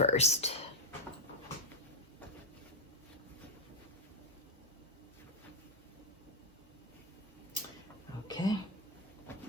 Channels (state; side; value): normal; both; correlation 0.02